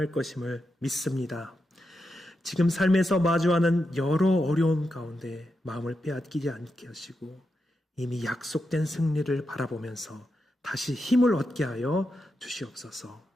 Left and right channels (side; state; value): both; normal; correlation 0.87